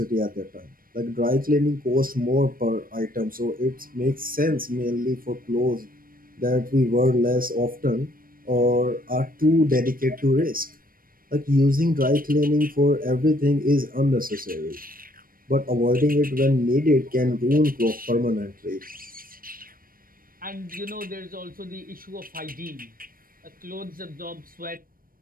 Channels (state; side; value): late; left; 0.41 ms